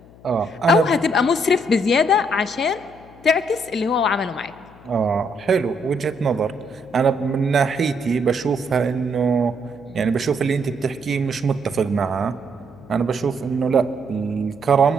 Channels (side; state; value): left; noise; hum, 23 dB below the sound